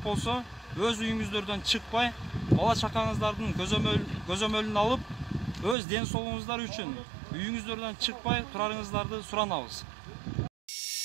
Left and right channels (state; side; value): drops out; left; at 5.8 s